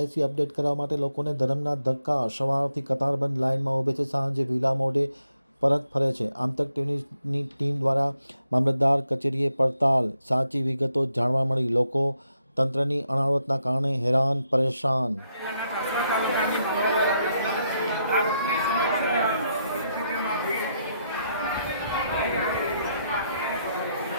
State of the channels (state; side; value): inverted; both; correlation -0.80